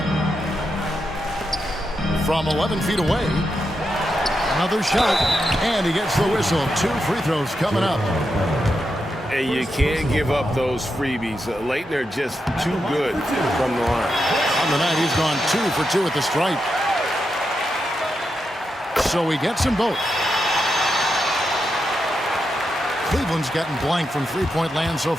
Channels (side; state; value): both; normal; correlation 0.86